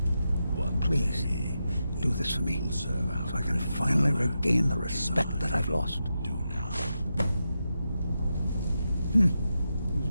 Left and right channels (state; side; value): inverted; both; correlation -0.88